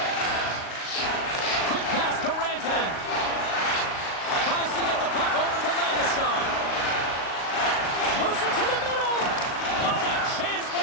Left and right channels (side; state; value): right; late; 38 ms